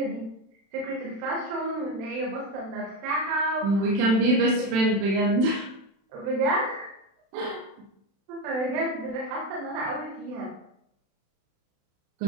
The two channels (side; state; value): left; late; 36 ms